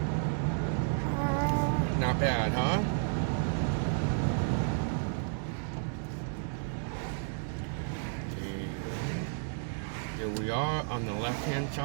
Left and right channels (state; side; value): silent; left; 56 dB below the other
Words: Not bad, huh? Here we are on the left-hand